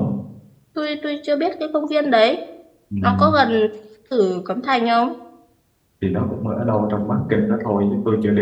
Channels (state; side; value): identical; both; correlation 1.00